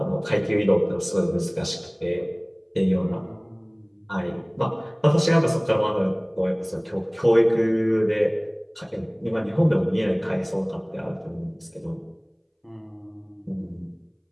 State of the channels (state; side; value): identical; both; correlation 1.00